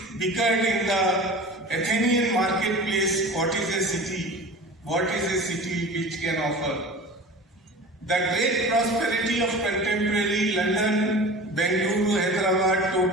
bickered in the Athenian marketplace, what is a city? What is a city which can offer? The great prosperity of contemporary London, Bengaluru, Hyderabad,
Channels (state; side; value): normal; both; correlation 0.37